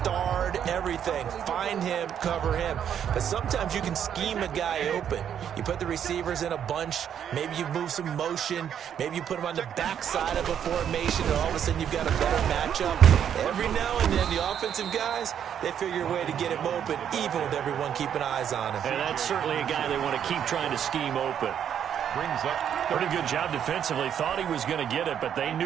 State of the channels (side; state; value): left; quieter; 9.0 dB